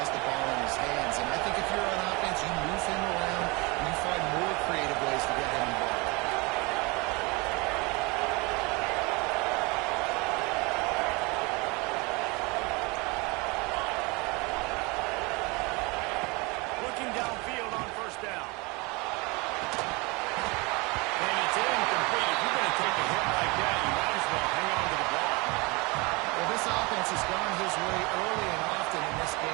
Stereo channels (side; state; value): left; quieter; 26.8 dB